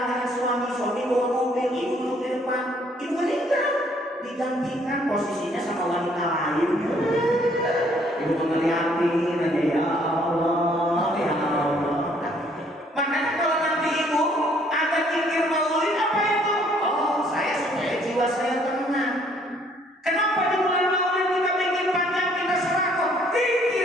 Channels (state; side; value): normal; both; correlation 0.63